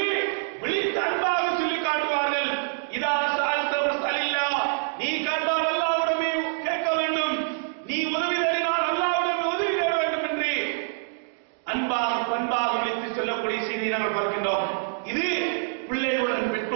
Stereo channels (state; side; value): silent; left; digital silence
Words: விழித்து அன்பாக சொல்லி காட்டுவார்கள். இதா சஅல்த ஃபஸ்அலில்லா, நீ கேட்டால் அல்லாஹ்விடமே கேட்க வேண்டும், நீ உதவி தேடினால் அல்லாஹ்விடமே உதவி தேட வேண்டும் என்று அன்பாக பண்பாக விழித்து சொல்லக்கூடிய செய்தியை நாங்கள் பார்க்கின்றோம். இது பிள்ளைகளுடன்